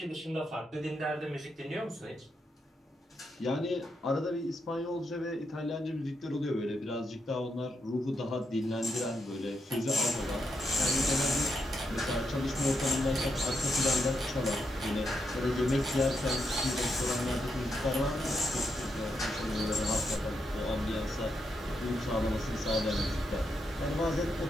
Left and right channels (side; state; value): both; normal; correlation 0.82